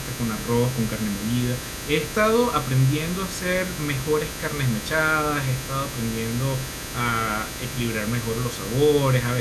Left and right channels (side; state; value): both; identical; correlation 1.00